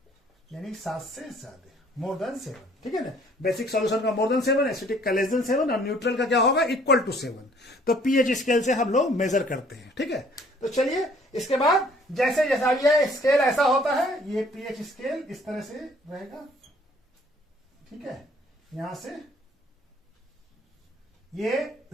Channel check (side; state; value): both; normal; correlation 0.58